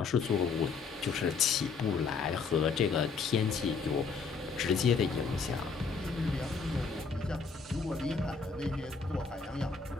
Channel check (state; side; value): quieter; right; 5.0 dB